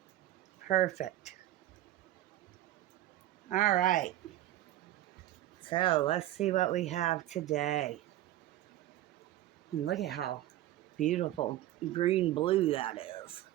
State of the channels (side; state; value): left; quieter; 14.0 dB